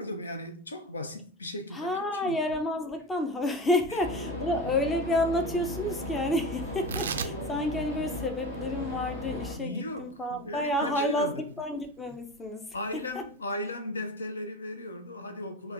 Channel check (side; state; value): both; normal; correlation 0.29